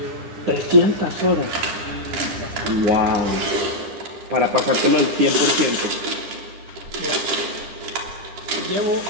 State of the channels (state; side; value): late; left; 10 ms